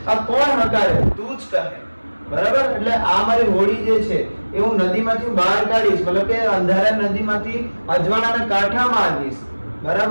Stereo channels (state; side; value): inverted; both; correlation -1.00